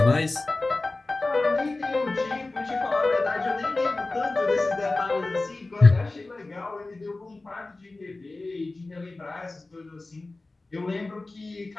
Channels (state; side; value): quieter; right; 3.2 dB